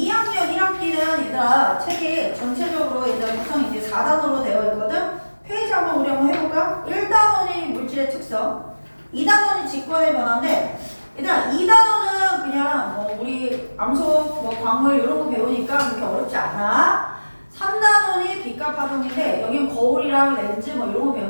1학기는 얘들아, 책이 전체적으로 얘들아 구성이 이제 4단원으로 되어 있거든? 페이지 한번 우리 한번 해볼까? 1단원이 물질의 특성, 2단원이 직관의 변화인데, 얘들아, 2단원은 그냥 뭐 우리 암석, 뭐 광물 이런 거 배우니까 그렇게 어렵지 않아. 3단원이 빛과 파동인데, 여기는 거울이랑 렌즈 뭐 이런 거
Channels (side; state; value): both; inverted; correlation -1.00